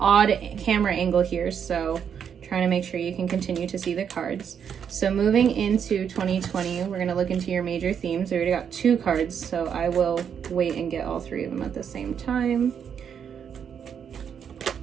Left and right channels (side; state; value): left; quieter; 7.8 dB